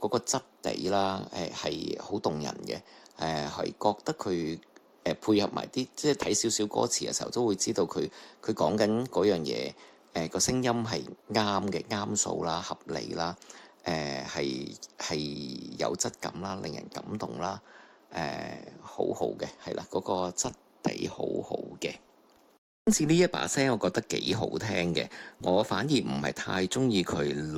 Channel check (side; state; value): both; identical; correlation 1.00